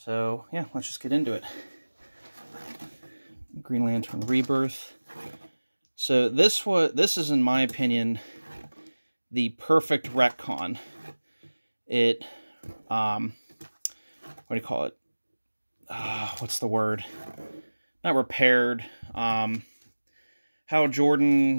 yeah, let's just get into it. Green Lantern Rebirth. So this is, in my opinion, the perfect retcon. It what do you call it? What's the word? Not repaired. How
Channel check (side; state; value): both; inverted; correlation -1.00